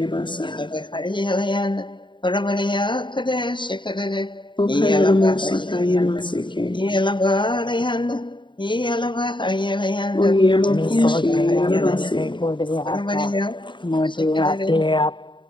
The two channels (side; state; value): right; late; 0.23 ms